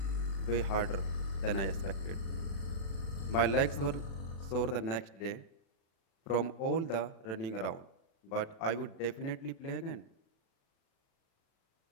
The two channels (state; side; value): late; right; 36 ms